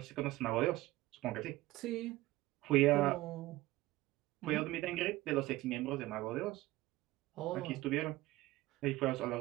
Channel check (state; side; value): quieter; left; 17.9 dB